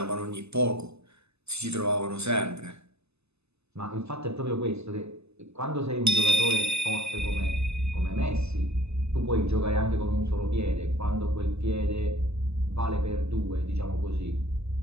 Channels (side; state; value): left; late; 0.80 ms